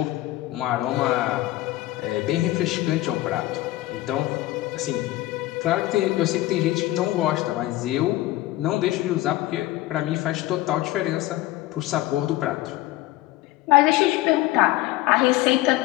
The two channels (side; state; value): right; quieter; 17.0 dB